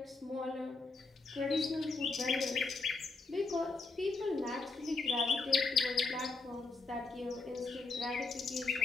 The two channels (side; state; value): right; quieter; 3.9 dB